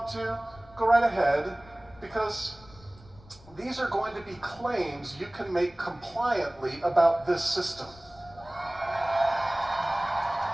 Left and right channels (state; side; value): noise; left; rumble, 24 dB below the sound